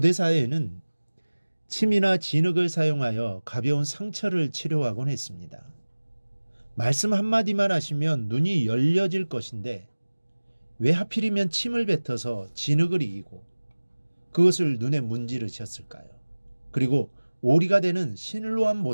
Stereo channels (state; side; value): inverted; both; correlation -1.00